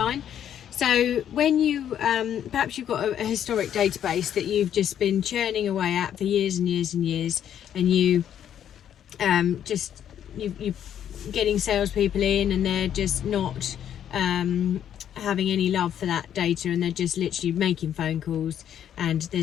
So when you perhaps you've got a historic database that you've just been churning away at for years and years and years, and you're getting salespeople in and they're just not having any love for that data, and they're just literally making phone calls, and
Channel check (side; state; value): right; quieter; 9.9 dB